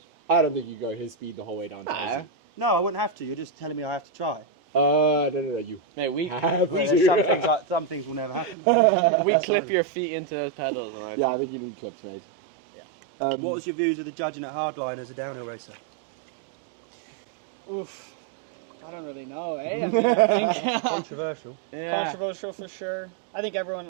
I don't think you go his speed the whole way down. Nah. No, I wouldn't have to. You're just telling me I have to try. No, you Mate, we have Well, to. there's some things will never happen. we clip your feet into those pedals, and Yeah, I think you need clips, mate. Yeah. What was your views of the judging at Hardline as a downhill racer? Oof. I don't really know, eh? I mean, I think Controversial. yeah. controversial for sure. I think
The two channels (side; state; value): left; drops out; at 8.6 s